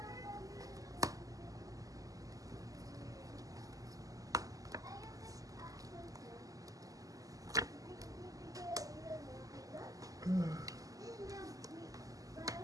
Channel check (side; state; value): left; late; 0.17 ms